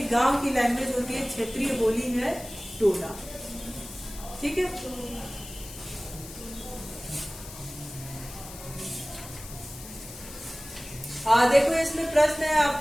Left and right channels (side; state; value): left; noise; hiss, 14 dB below the sound